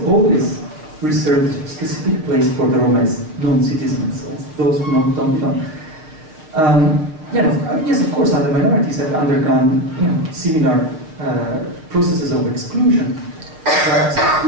always reserved a specific place for the Roma as non-citizens, as those who don't belong. Yes, of course, other minorities have undergone similar processes of exclusion,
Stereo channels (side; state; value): left; late; 6.4 ms